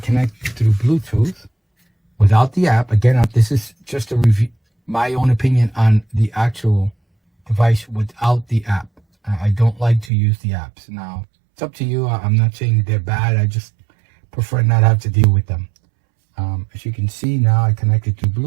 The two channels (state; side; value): drops out; left; at 10.1 s